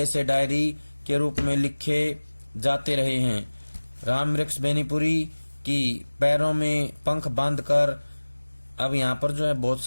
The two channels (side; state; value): both; inverted; correlation -1.00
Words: से डायरी के रूप में लिखे जाते रहे हैं। रामवृक्ष बेनीपुरी कि पैरों में पंख बांधकर। अब यहाँ पर जो है बहुत